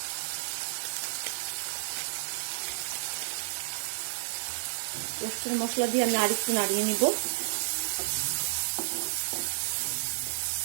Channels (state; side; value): silent; left; digital silence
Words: রোস্টের মশলা দিয়ে আমি আরেকটু নাড়িয়ে নিব।